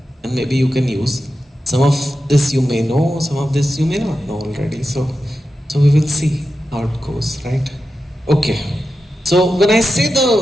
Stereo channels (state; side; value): normal; both; correlation 0.91